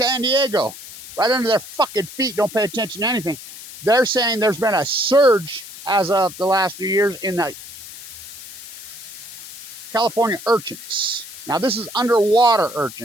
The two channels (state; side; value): noise; left; hiss, 14 dB below the sound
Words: Diego. Right under their fucking feet. Don't pay attention to anything. They're saying there's been a surge as of the last few years in the California urchins. Now this is underwater